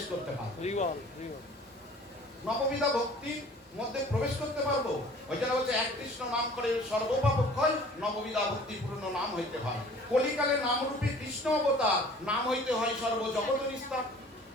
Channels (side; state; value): both; normal; correlation 0.49